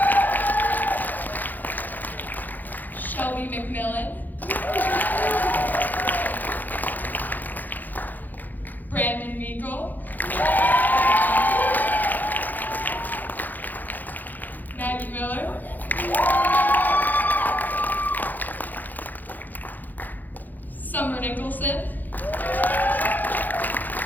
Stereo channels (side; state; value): right; late; 0.085 ms